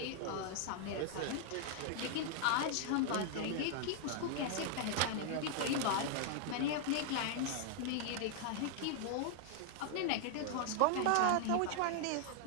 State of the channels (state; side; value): different; both; correlation 0.00